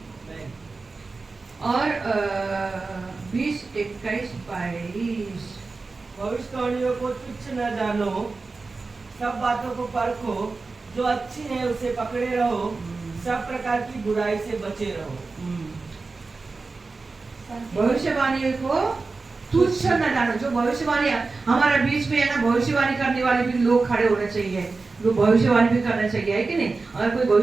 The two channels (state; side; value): quieter; left; 3.9 dB